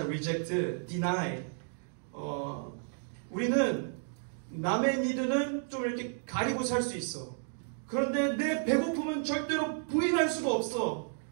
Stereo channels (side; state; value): left; silent; 56 dB below the other